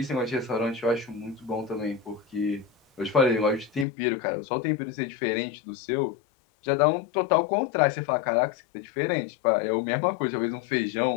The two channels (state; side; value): drops out; right; at 3.9 s